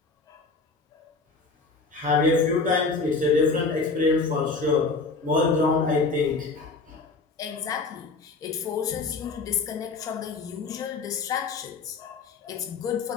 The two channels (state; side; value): quieter; right; 4.1 dB